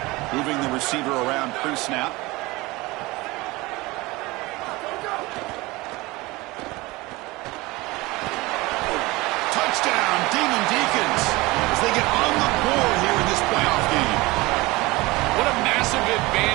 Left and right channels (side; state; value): left; quieter; 21.8 dB